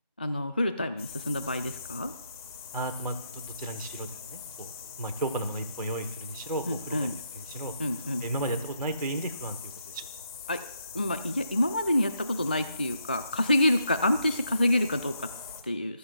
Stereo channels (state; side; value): inverted; both; correlation -0.76